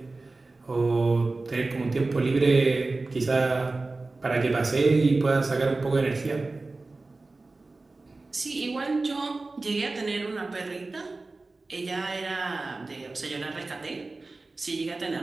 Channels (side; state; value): left; quieter; 3.4 dB